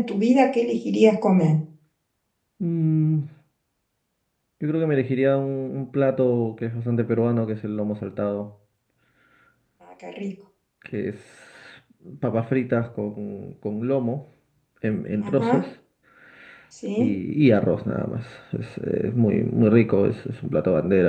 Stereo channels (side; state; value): both; identical; correlation 1.00